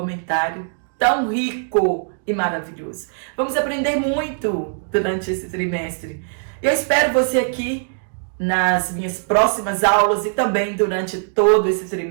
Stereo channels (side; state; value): left; silent; digital silence